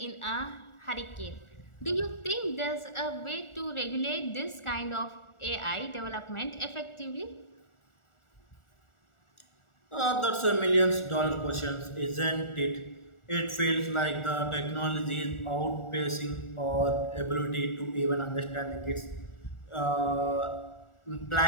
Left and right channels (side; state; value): right; late; 1.4 ms